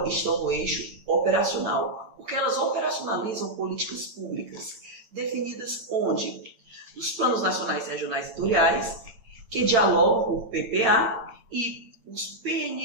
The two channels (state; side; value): late; left; 8.9 ms